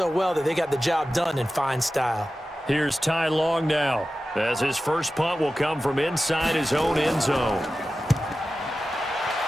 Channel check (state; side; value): normal; both; correlation 0.94